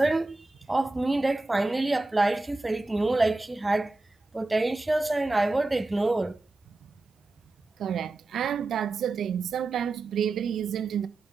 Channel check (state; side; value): quieter; left; 3.1 dB